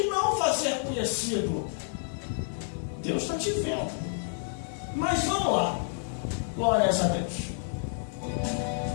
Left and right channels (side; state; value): right; silent; 58 dB below the other